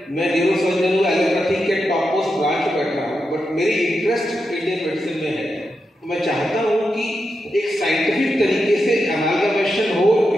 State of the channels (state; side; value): normal; both; correlation 0.87